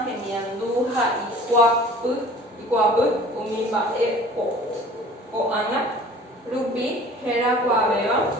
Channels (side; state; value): both; normal; correlation 0.47